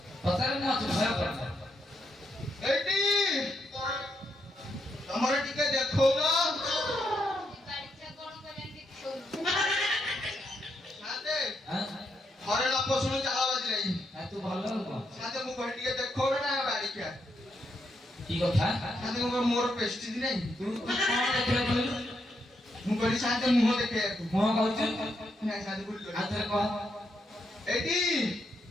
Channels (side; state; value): both; normal; correlation 0.80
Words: पचार ना तो भय कर এইটি তোমার টিকে দেখো না বাড়িটা কোন করে দেখছো সাদে हां ঘরে লোক শুনে চালা বাজি নাই तू ভালো না সাদে মু ঘরে টিকে দেখো না বাড়ি কে की কথা সাদে মোর পেস্টিজ নাই तू कोन देखले बोलू মু কইলি সাদে মুহ দেখে मो कहू না সাদে ভুল করি आते कह এইটি